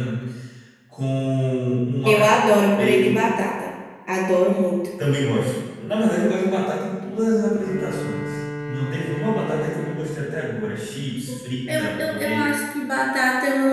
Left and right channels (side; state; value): both; identical; correlation 1.00